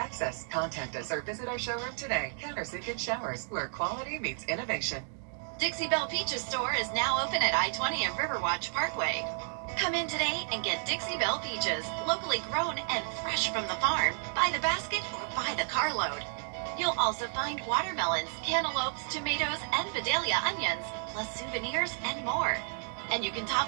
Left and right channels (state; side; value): silent; left; 57 dB below the other